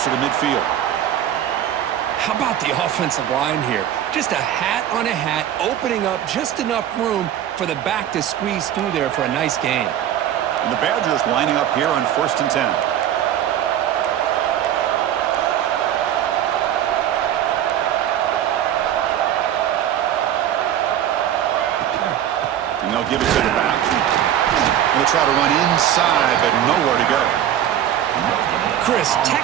to midfield. How about the offensive line here? Just a hat on a hat, opening up just enough room for the back to squeeze through there for a nice gain. And the Badgers lining up here on 1st and 10. And they'll give it to the back. And they'll try to run inside, but nowhere to go. Chris,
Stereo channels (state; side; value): quieter; left; 10.8 dB